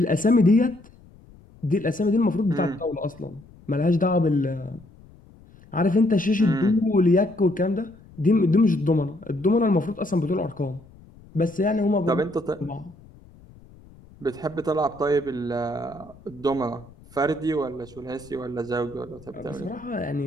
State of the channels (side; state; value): left; noise; rumble, 24 dB below the sound